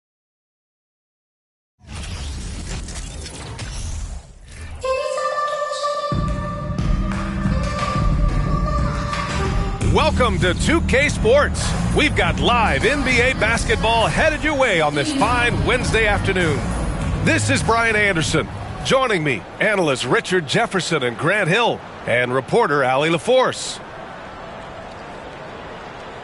Welcome to 2K Sports. We've got live NBA basketball headed your way on this fine Wednesday afternoon. This is Brian Anderson. Joining me, analysts Richard Jefferson and Grant Hill, and reporter Allie LaForce.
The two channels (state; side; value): identical; both; correlation 1.00